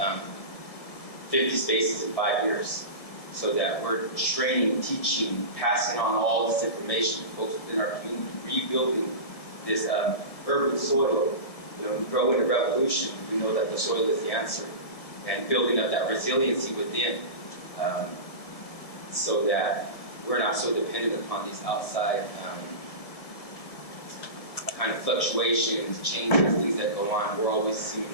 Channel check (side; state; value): right; late; 1.7 ms